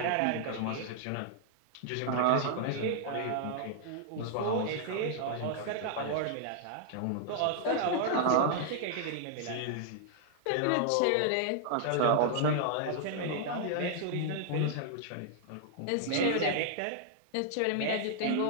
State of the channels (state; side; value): different; both; correlation -0.01